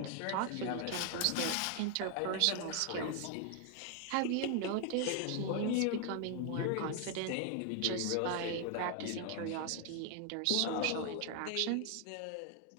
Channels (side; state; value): both; different; correlation 0.00